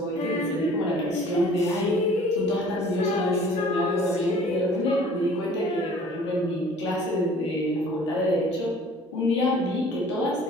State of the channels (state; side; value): normal; both; correlation 0.50